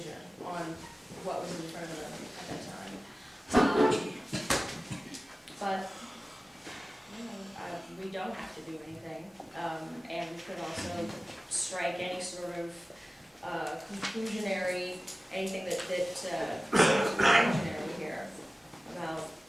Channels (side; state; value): both; normal; correlation 0.97